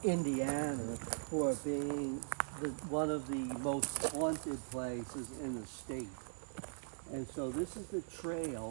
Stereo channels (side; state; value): left; silent; digital silence